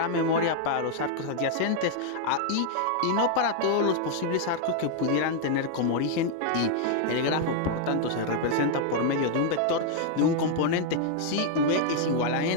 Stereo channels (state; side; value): different; both; correlation 0.00